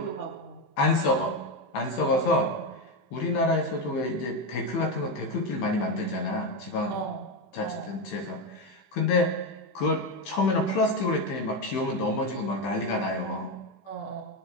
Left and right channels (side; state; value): right; late; 16 ms